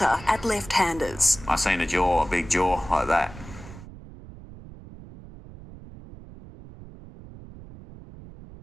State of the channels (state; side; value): noise; right; rumble, 17 dB below the sound